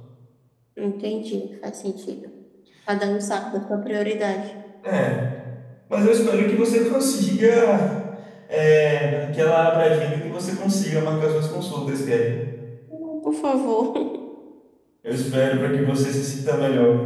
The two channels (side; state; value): both; identical; correlation 1.00